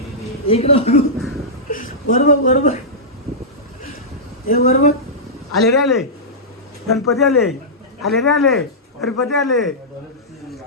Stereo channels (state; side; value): normal; both; correlation -0.12